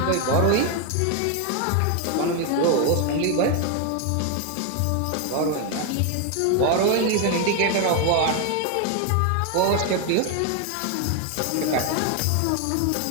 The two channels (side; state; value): both; different; correlation 0.01